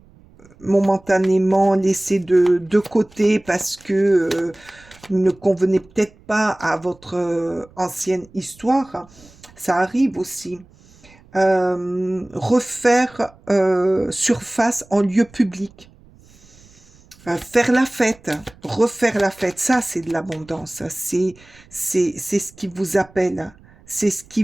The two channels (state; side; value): noise; right; rumble, 27 dB below the sound